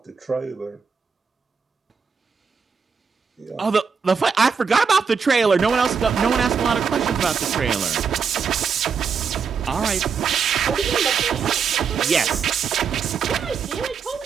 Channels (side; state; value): left; quieter; 6.0 dB